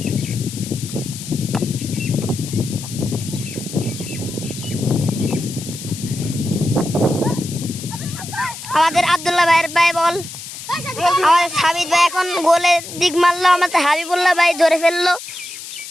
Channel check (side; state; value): left; noise; hiss, 12 dB below the sound